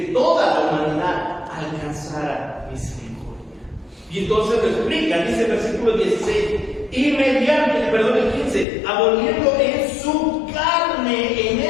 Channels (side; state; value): right; drops out; at 8.7 s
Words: toda la humanidad alcanzara misericordia. Y entonces lo explica, dice el versículo 16, y mediante, el 15, aboliendo en su carne, en